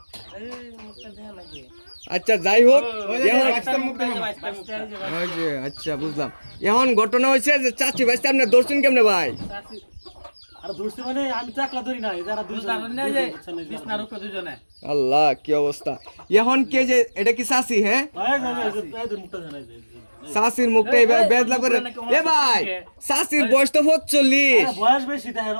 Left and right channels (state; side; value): inverted; both; correlation -1.00